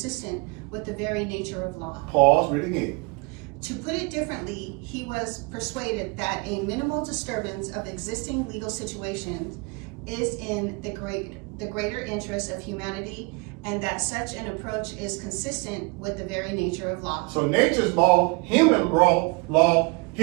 with the very nature of law. Pause, read again. To put it differently, he was persuaded that a minimal disturbance of existing legal situations is in the greater interest of humanity, and that such an approach is consistent with the very nature of law. So nature's law, human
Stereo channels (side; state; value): left; quieter; 30.1 dB